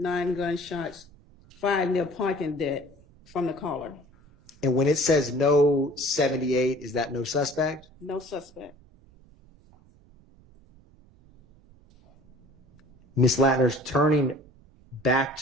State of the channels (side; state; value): right; noise; rumble, 28 dB below the sound